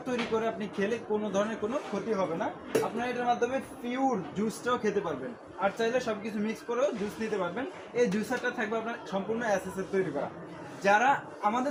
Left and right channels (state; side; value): identical; both; correlation 1.00